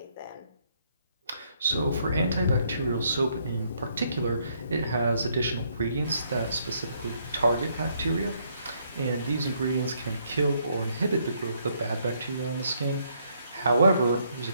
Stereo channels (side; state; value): both; inverted; correlation -0.71